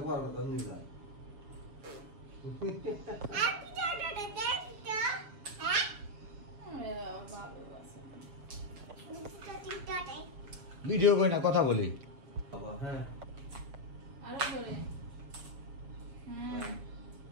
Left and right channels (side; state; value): left; late; 7.1 ms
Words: পারবো তো নি না ভিডিও কই না কথা বলি বাবা হ্যাঁ আরো করে